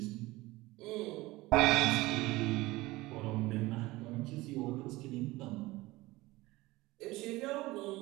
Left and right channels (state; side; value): quieter; left; 19.8 dB